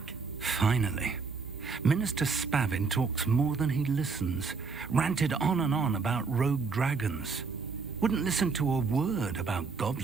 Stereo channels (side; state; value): left; quieter; 4.8 dB